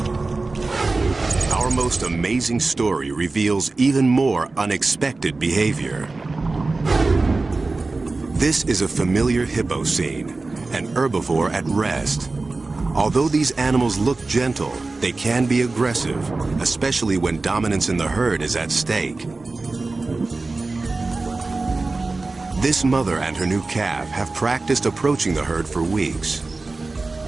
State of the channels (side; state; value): left; quieter; 3.5 dB